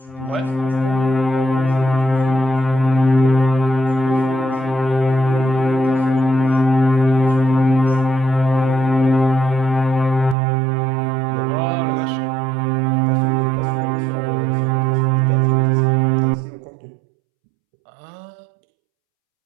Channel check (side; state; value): left; drops out; at 10.4 s